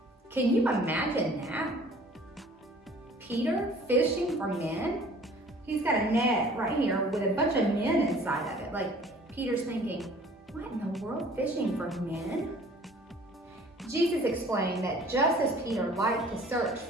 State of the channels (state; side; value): normal; both; correlation 0.51